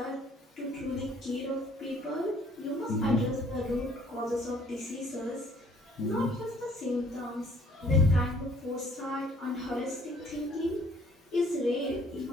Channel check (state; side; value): normal; both; correlation 0.60